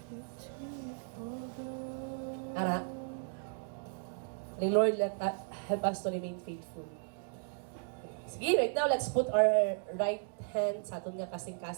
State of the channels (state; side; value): silent; left; 54 dB below the other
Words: Ara. Kaning Lord, help us to remain faithful. Sige, right now, let's put our right hand sa aton nga